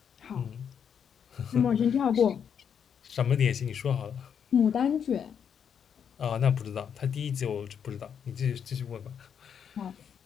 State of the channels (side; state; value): right; quieter; 7.7 dB